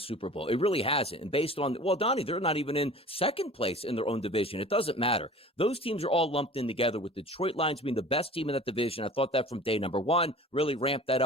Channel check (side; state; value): both; normal; correlation 0.43